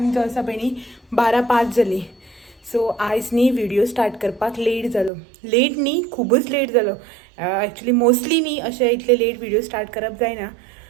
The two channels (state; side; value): drops out; left; at 5.1 s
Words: जो आसा पळय न्ही 12:05 जाली. सो आयज न्ही व्हिडिओ स्टार्ट करपाक लेट जालो. लेट न्ही खूबच लेट जालो. एक्चुअली मोस्टली न्ही अशें इतले लेट व्हिडिओ स्टार्ट करप जायना.